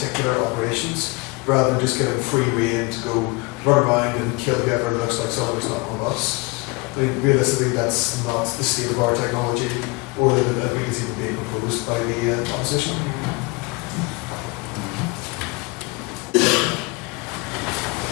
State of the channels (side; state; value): right; quieter; 26.5 dB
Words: operations, rather than just getting free rein to go run around and kill whoever looks like someone who's not one of us. I mean, realistically, that's not the state of our technology, or that we can see being proposed by the opposition.